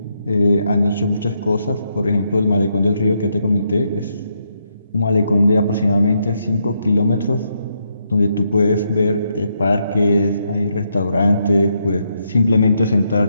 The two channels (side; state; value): both; inverted; correlation -0.78